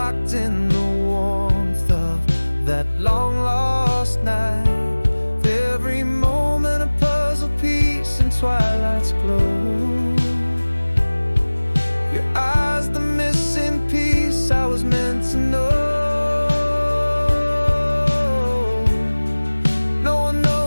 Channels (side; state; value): both; inverted; correlation -1.00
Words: in the warmth of that long lost night. Every moment a puzzle piece in twilight's glow. Your eyes, the missing piece I was meant to know. No one